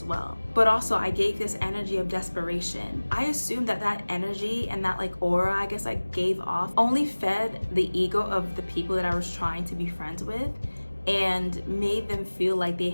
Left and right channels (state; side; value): inverted; both; correlation -1.00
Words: well. But also I gave this energy of desperation. I assumed that energy and that aura I guess I gave off only fed the ego of the people that I was trying to be friends with and made them feel like they